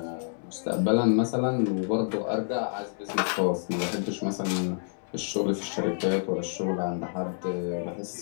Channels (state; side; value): silent; right; digital silence